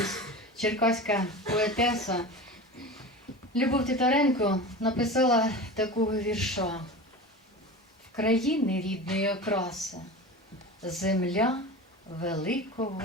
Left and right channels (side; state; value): both; normal; correlation 0.31